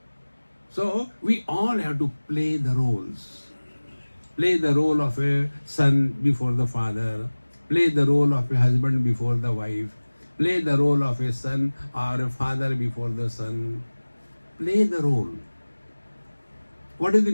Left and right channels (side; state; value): both; inverted; correlation -1.00